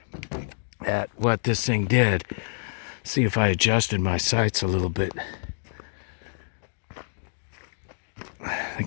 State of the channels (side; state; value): right; silent; digital silence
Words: at what this thing did. See if I adjusted my sights a little bit. I